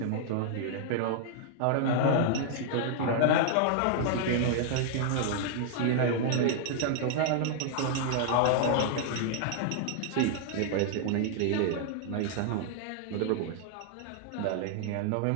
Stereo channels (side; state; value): both; different; correlation -0.01